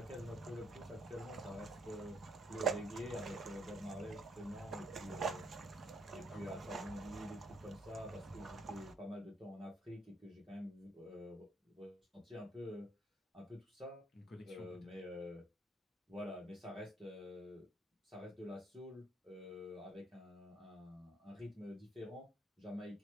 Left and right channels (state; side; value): normal; both; correlation 0.67